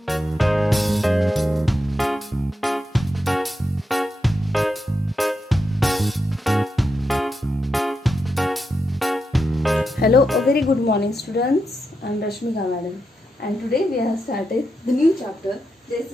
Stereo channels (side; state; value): both; normal; correlation 0.86